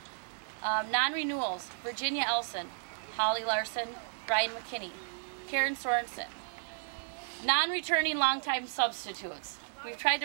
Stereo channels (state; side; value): silent; left; digital silence